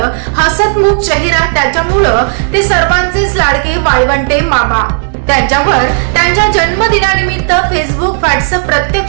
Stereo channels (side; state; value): left; silent; digital silence